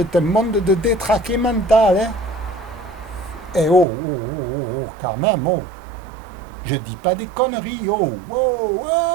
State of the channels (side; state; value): left; drops out; at 3.9 s